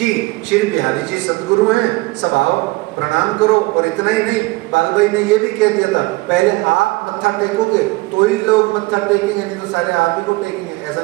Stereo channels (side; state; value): left; quieter; 22.4 dB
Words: श्री बिहारी जी सदगुरु हैं, सब आओ प्रणाम करो। और इतना ही नहीं, बालभाई ने ये भी कह दिया था पहले आप मत्था टेकोगे तो ही लोग मत्था टेकेंगे, नहीं तो सारे आप ही को टेकेंगे। ऐसा